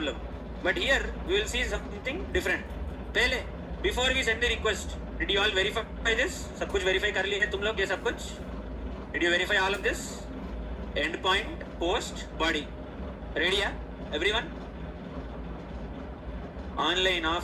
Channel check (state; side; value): identical; both; correlation 1.00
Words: but here we will see something different. पहले before we send the request, did you all verify this? सब कुछ verify कर लिया है तुम लोग ये सब कुछ? did you verify all of this? endpoint, post, body, ready? everyone, online,